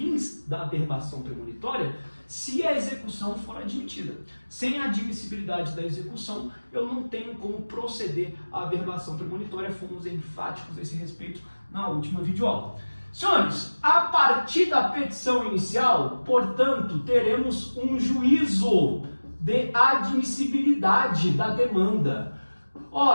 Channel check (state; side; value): inverted; both; correlation -1.00